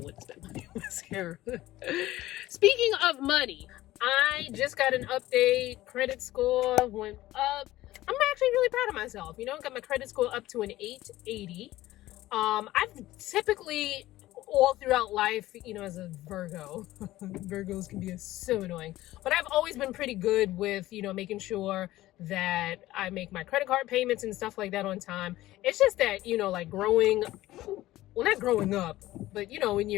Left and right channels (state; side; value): quieter; right; 16.1 dB